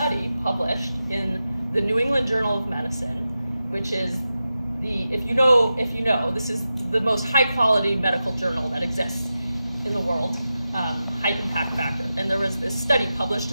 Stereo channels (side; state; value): both; inverted; correlation -0.92